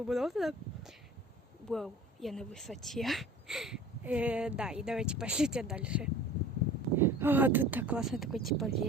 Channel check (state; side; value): normal; both; correlation 0.43